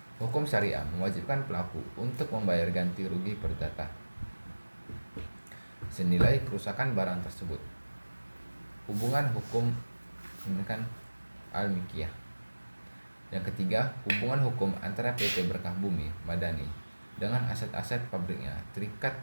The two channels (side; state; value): both; inverted; correlation -1.00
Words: hukum syariah mewajibkan pelaku untuk membayar ganti rugi perdata senilai kerusakan barang tersebut. Hubungan hukum al-Mikiyah. Yang ketiga, hubungan hukum antara PT Berkah Bumi Madani dengan aset-aset pabriknya terikat